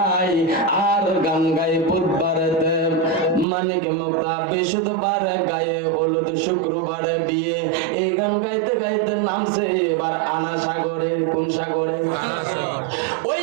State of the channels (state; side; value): drops out; left; at 3.5 s